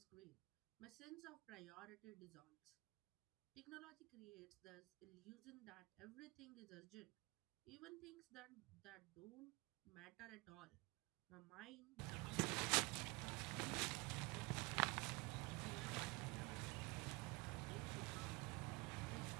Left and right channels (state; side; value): quieter; left; 25.9 dB